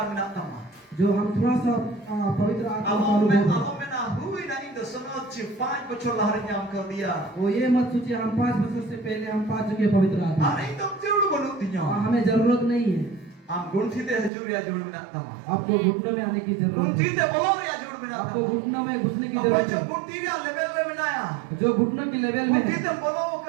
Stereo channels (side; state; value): left; drops out; at 14.3 s